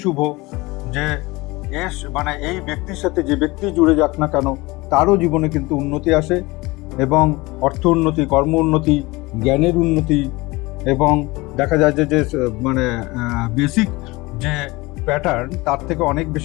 শুভ যে এই ব্যক্তির সাথে যে ব্যক্তি জুড়ে যাক না কেন তারও জীবনে কিন্তু উন্নতি আসে, এবং অর্থ উন্নতি, কর্ম উন্নতি, জ্ঞানের উন্নতি, এবং দেখা যায় যে বেসিক যে প্যাটার্ন তার থেকে অনেক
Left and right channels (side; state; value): right; quieter; 22.4 dB